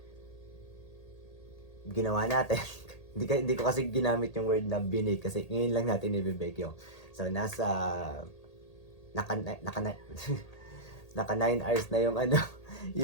ginawa natin. Hindi ko kasi ginamit yung word na binake kasi ngayon lang natin i-bake yung. So, naka naka naka 9 hours na yung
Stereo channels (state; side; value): late; right; 1.8 ms